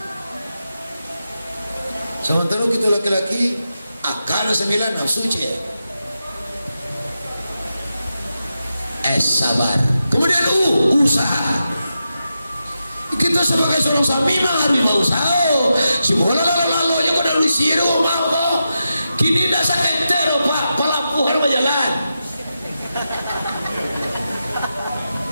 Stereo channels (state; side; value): inverted; both; correlation -0.88